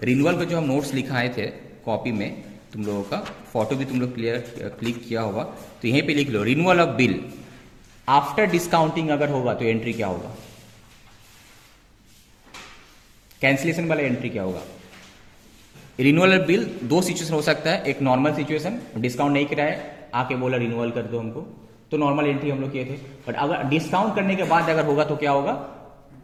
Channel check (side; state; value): both; identical; correlation 1.00